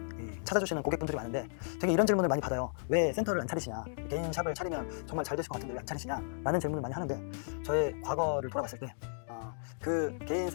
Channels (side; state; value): right; silent; digital silence